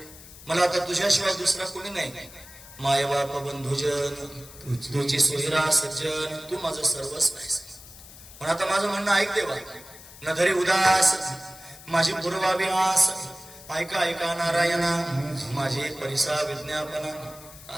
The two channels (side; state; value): left; noise; hiss, 18 dB below the sound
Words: मला आता तुझ्याशिवाय दुसरा कोणी नाही. मायबाप बंधुजन तुझी सोयरा सज्जन तू माझं सर्वस्व आहेस. पण आता माझं म्हणणं ऐक देवा न धरी उदास माझी पूर्वावी आस ऐका ऐका नारायणा माझी परिसा विज्ञापना